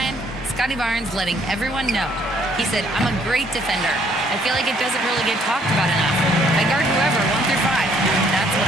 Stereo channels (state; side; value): normal; both; correlation 0.65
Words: Scotty Barnes letting everyone know. He said, I'm a great defender. I feel like it doesn't really get talked about enough. I guard whoever, 1 through 5. That's